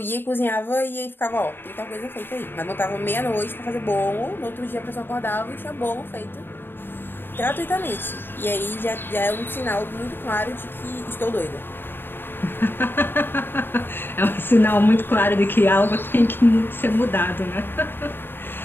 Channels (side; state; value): right; late; 0.10 ms